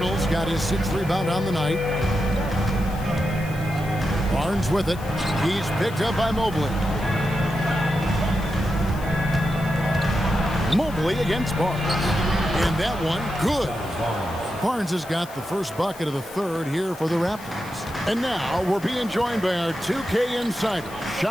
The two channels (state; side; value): noise; left; hiss, 19 dB below the sound